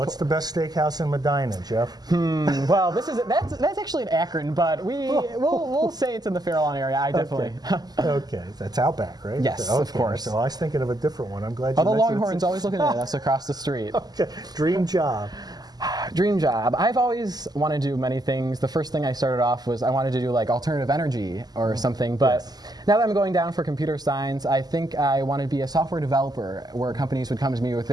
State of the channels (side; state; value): left; late; 0.20 ms